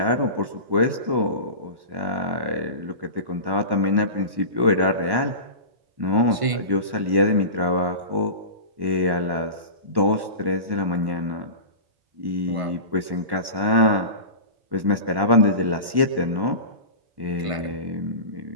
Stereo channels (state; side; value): late; left; 1.1 ms